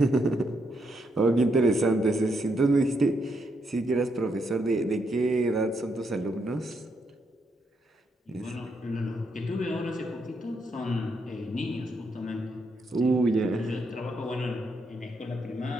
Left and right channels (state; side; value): normal; both; correlation 0.78